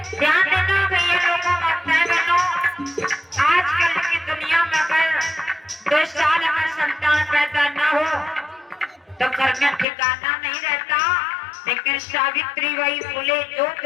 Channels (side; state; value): right; drops out; at 9.9 s